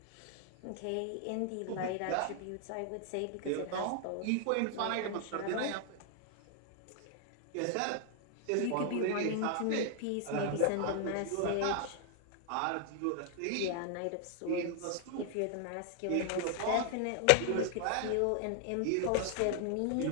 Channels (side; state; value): both; different; correlation 0.00